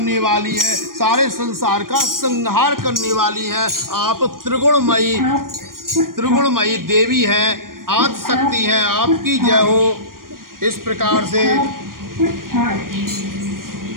वाली है, सारे संसार का संहार करने वाली है। आप त्रिगुणमयी देवी हैं, आदि शक्ति है। आपकी जय हो। इस प्रकार से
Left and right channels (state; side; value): late; left; 0.91 ms